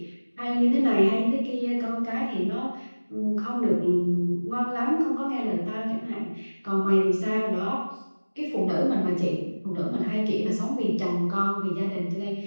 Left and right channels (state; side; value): inverted; both; correlation -1.00